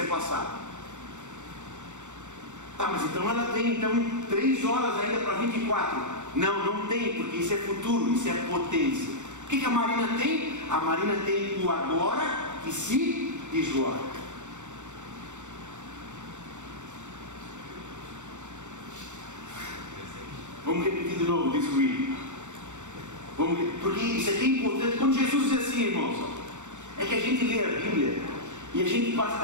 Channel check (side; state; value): left; late; 0.84 ms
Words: é passado. Tá, mas então ela tem 3 horas ainda para 24. Não tem, porque isso é futuro, isso é potência. O que a Marina tem? A Marina tem o agora que se desloca. Vamos repetir de novo, diz o Will. Porque isso aqui é importante. Quando Jesus diz assim, irmãos, é que a gente lê a Bíblia e a gente